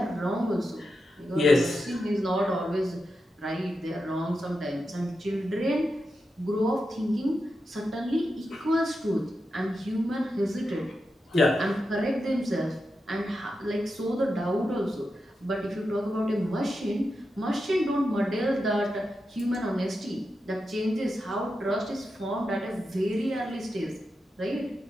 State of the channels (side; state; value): both; normal; correlation 0.88